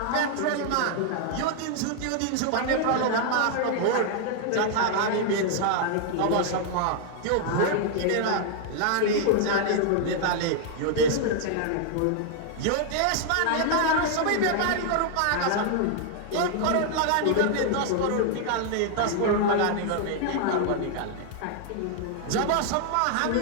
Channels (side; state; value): both; different; correlation 0.00